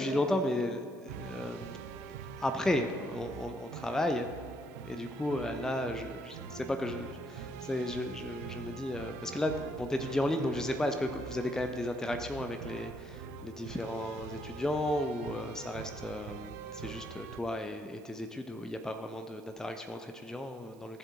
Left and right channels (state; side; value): noise; right; hiss, 29 dB below the sound